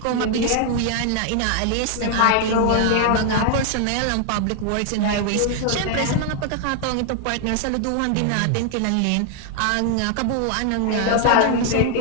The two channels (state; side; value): different; both; correlation 0.00